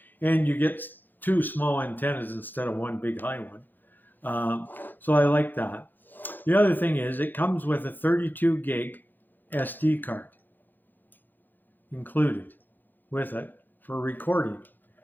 And you get two small antennas instead of one big high one. So I like that. The other thing is it comes with a 32 gig SD card included with it for recording.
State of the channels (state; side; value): late; right; 0.088 ms